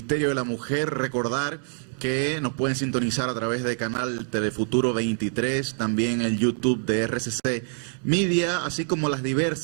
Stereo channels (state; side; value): silent; left; 61 dB below the other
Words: de la Mujer. Recordar que nos pueden sintonizar a través del canal Telefuturo 23, también el YouTube de RCC Media, así como las